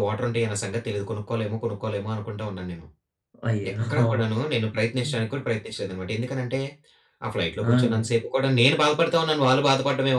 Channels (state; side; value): identical; both; correlation 1.00